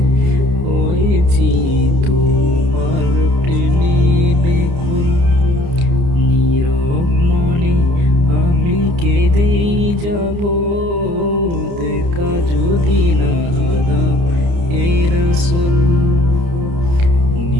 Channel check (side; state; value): left; late; 29 ms